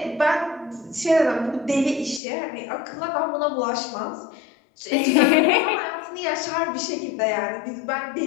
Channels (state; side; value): drops out; right; at 2.2 s